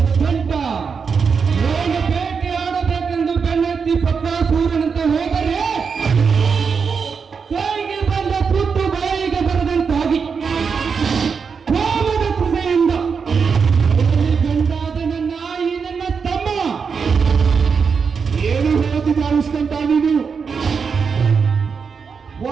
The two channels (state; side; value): quieter; left; 5.8 dB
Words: ಗಂಟ ಬೇಟೆ ಆಡಬೇಕೆಂದು ಬೆನ್ನತ್ತಿ ಪತ್ರ ಸೂರ್ಯನಂತೆ ಹೋದರೆ ಕೈಗೆ ಬಂದ ತುತ್ತು ಬಾಯಿಗೆ ಬರದಂತಾಗಿ ಕೋಮದ ಕೃಷೆಯಿಂದ ಗಂಡಾದ ನನ್ನ ಈ ನನ್ನ ತಮ್ಮ ಏನು ಹೇಳ್ತಿದ್ದ ಅನಿಸ್ಕೊಂತ ನೀನು